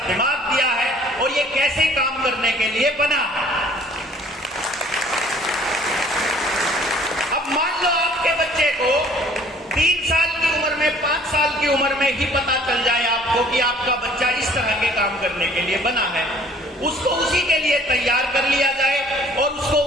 दिमाग दिया है और ये कैसे काम करने के लिए बना। अब मान लो आपके बच्चे को 3 साल की उम्र में, 5 साल की उम्र में ही पता चल जाए आपको कि आपका बच्चा इस तरह के काम करने के लिए बना है, उसको उसी के लिए तैयार कर लिया जाए और उसको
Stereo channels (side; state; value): both; normal; correlation 0.55